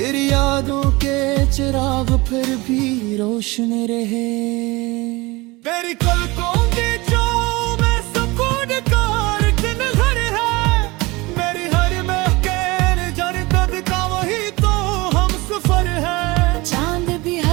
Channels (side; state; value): left; quieter; 23.0 dB